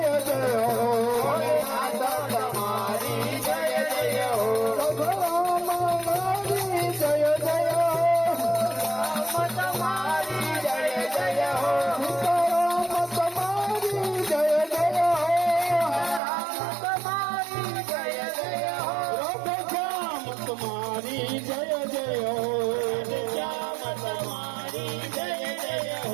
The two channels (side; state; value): left; drops out; at 16.2 s